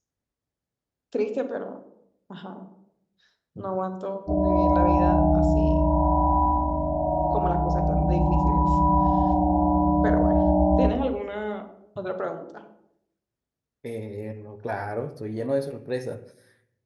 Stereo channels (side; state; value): both; identical; correlation 1.00